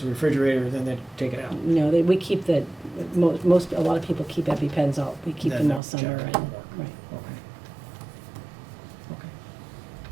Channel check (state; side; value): drops out; left; at 5.8 s